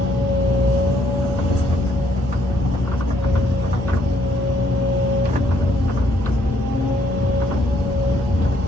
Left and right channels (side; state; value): both; normal; correlation 0.69